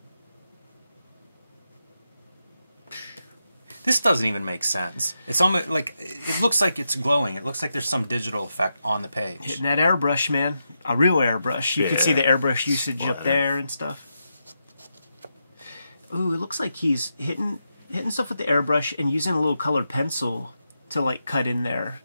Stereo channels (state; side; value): inverted; both; correlation -0.86